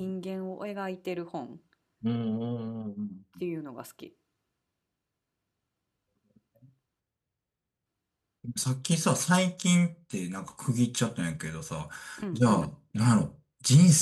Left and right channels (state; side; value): identical; both; correlation 1.00